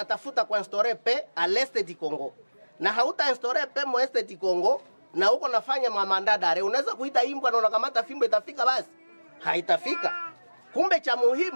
kuinstaurer paix à l'est du Congo. Na hauta instaurer paix mo est du Congo na uko nafanya mandat d'arrêt, unaweza kuita imbwa na unakamata fimbo itafika basi? Haitafika. Kumbe cha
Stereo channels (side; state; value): both; inverted; correlation -1.00